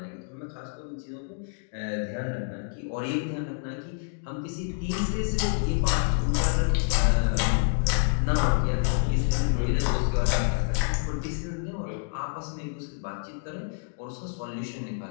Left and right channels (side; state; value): right; silent; 60 dB below the other